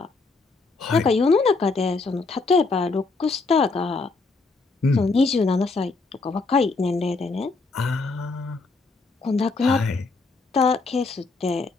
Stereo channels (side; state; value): right; quieter; 3.9 dB